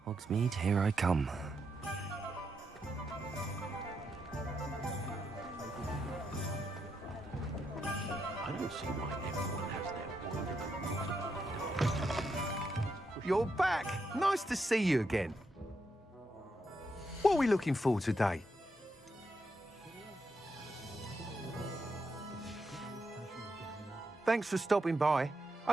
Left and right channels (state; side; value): normal; both; correlation 0.82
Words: Hogsmeade, here I come. I don't see why everyone has their You're back! Nice to see you again. What are we looking for today? Thanks for stopping by.